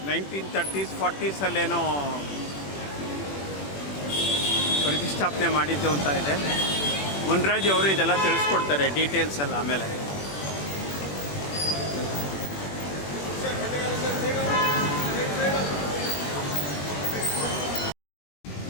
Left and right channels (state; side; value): late; right; 21 ms